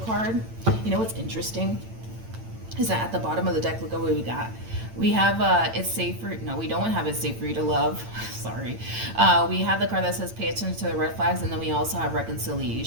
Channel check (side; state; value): left; late; 8.9 ms